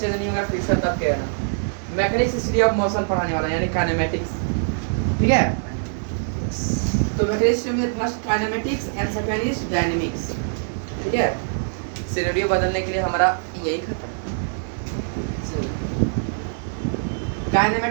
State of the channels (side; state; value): left; silent; 62 dB below the other